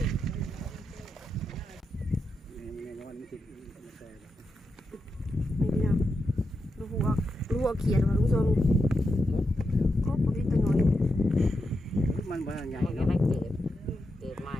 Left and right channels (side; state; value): both; normal; correlation 0.86